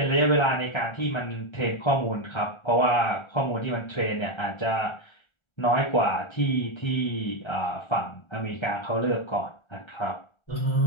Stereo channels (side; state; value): right; late; 1.3 ms